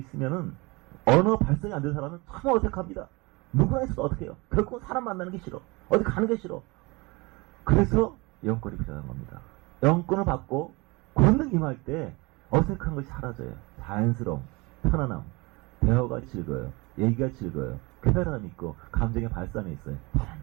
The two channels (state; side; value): quieter; left; 25.3 dB